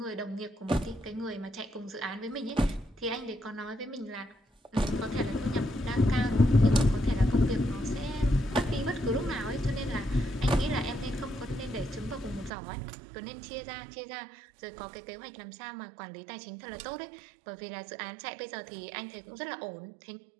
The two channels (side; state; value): left; drops out; at 12.5 s